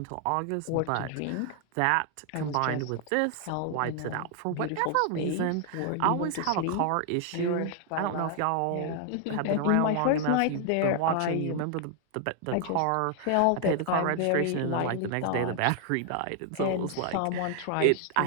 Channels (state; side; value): different; both; correlation 0.00